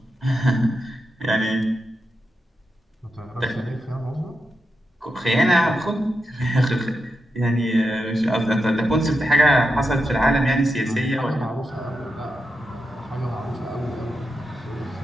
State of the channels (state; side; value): normal; both; correlation 0.87